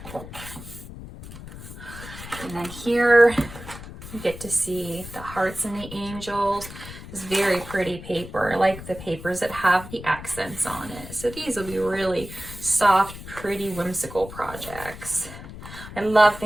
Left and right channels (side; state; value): left; noise; rumble, 13 dB below the sound